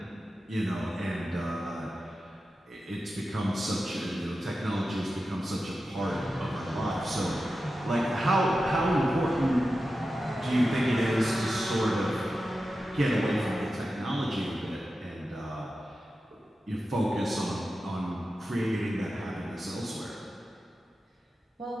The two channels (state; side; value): normal; both; correlation 0.92